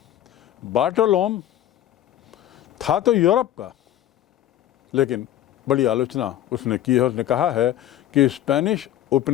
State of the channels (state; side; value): quieter; right; 12.4 dB